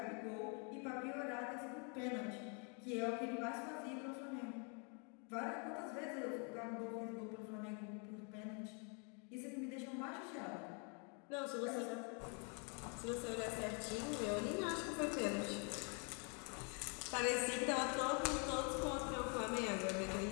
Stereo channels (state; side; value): quieter; right; 37.5 dB